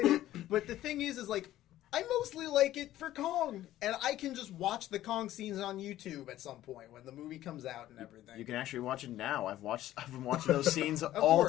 it. But the thing is like I mostly like it for Kong, and I can just watch the Kong scenes on YouTube at some point when the movie comes out and everything. You can actually watch it now. I've been watching those scenes all course.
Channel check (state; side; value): quieter; right; 13.9 dB